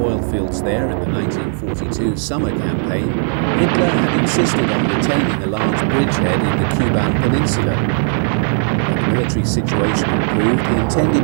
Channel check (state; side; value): silent; left; digital silence